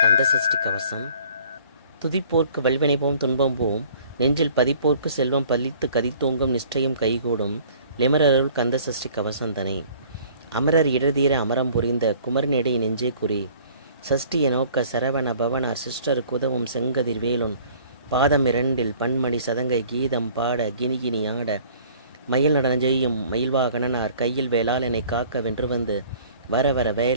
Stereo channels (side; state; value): both; inverted; correlation -0.53